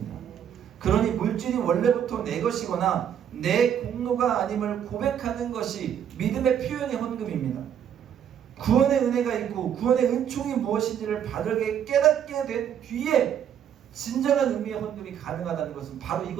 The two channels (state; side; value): quieter; left; 9.1 dB